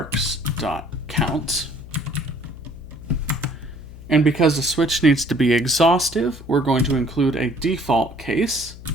And because the switch needs to be exhaustive, we're going to include a default case.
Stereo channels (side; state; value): left; noise; hum, 16 dB below the sound